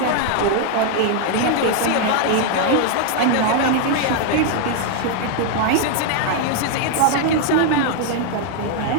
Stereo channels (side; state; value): both; different; correlation 0.00